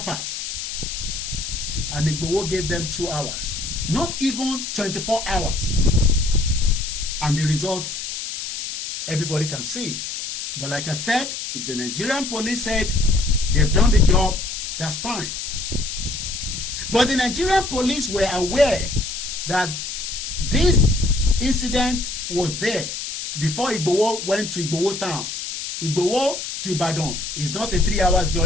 And Igboho gave them 2 hours. Not even 24 hours. And the result, everybody can see it. But like I said, if the Nigerian police said they've done the job, that's fine. But the Nigerian police were aware that this incident was there before Igboho went to Igboho town. Igboho to Ibadan is not a 3 hours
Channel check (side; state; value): left; noise; hiss, 6 dB below the sound